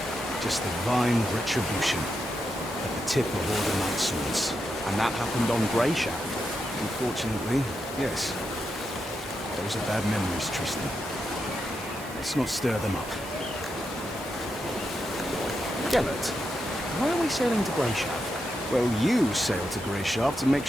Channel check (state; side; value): normal; both; correlation 0.85